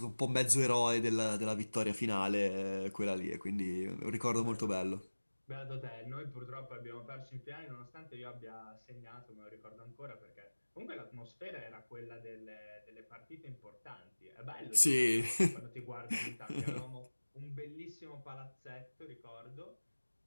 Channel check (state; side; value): inverted; both; correlation -1.00